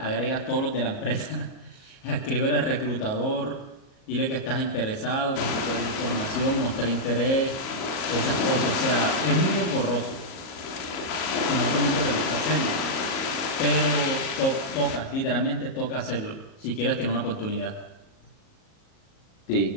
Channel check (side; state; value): right; late; 38 ms